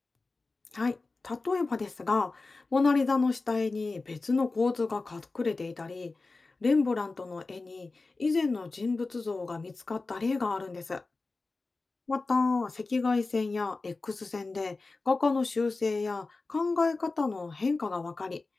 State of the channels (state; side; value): quieter; right; 3.6 dB